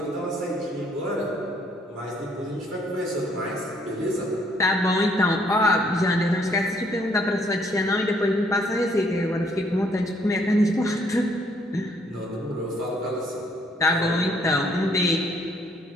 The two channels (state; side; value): normal; both; correlation 0.67